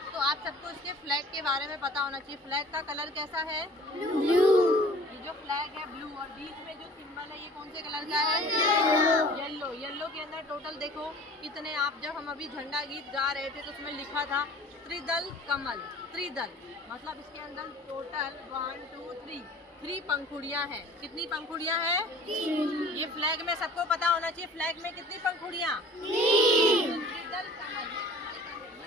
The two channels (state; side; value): normal; both; correlation 0.47